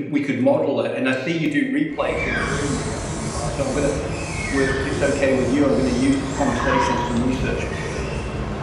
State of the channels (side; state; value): both; identical; correlation 1.00